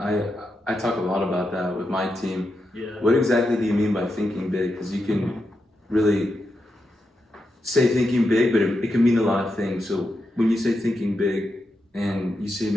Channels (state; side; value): normal; both; correlation 0.86